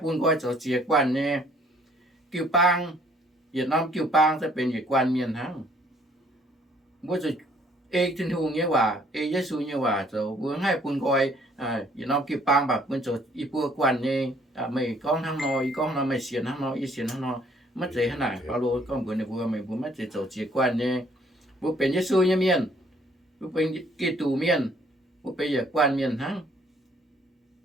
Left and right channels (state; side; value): normal; both; correlation 0.62